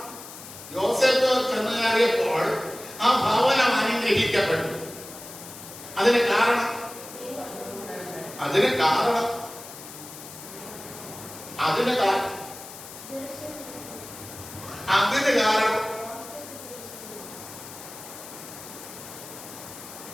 യോസേപ്പ് ചെന്ന് കയറിയപ്പോൾ ആ ഭവനം അനുഗ്രഹിക്കപ്പെട്ടു. അതിന് കാരണം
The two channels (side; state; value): left; noise; hiss, 14 dB below the sound